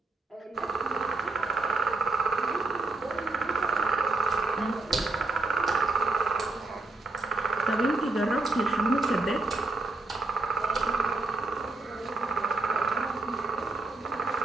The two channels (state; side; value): quieter; left; 3.2 dB